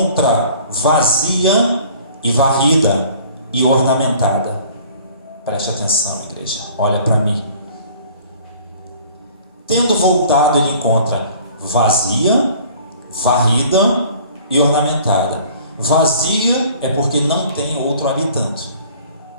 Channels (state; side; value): inverted; both; correlation -0.50